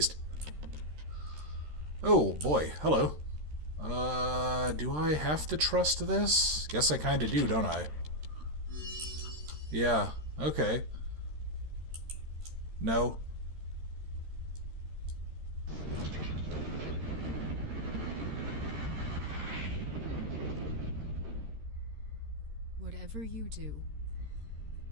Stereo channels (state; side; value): late; left; 13 ms